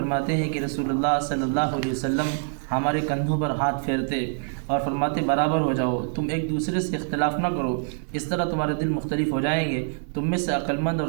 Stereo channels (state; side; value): silent; left; 62 dB below the other